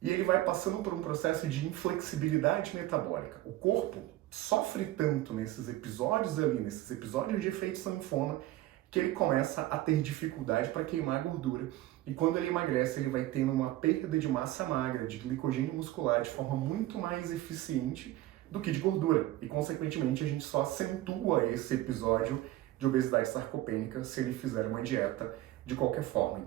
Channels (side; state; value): left; quieter; 15.8 dB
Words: e ele vai passando por um processo de inflexibilidade metabólica. O corpo sofre tanto nesses episódios de efeito sanfona, que ele começa a ter dificuldade para queimar gordura. E quando ele emagrece, ele vai tendo uma perda de massa magra, de glicogênio muscular, de forma muito mais eficiente do que de gordura. E, consequentemente, a gente só acentua esse episódio de obesidade sarcopênica se ele fizer uma dieta de qualquer forma.